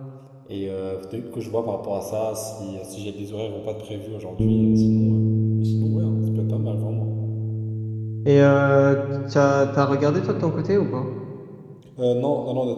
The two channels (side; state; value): both; identical; correlation 1.00